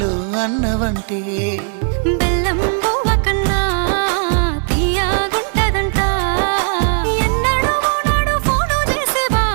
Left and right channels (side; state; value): left; silent; 60 dB below the other